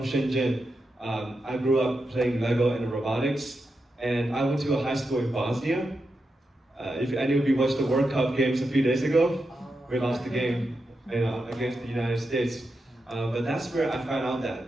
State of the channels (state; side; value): normal; both; correlation 0.87